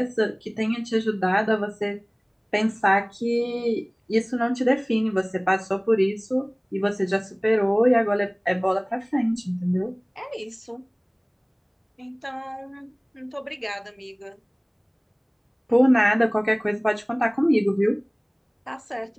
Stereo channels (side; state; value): both; identical; correlation 1.00